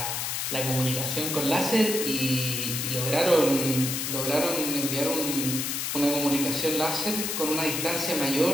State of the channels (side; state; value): left; noise; hiss, 2 dB below the sound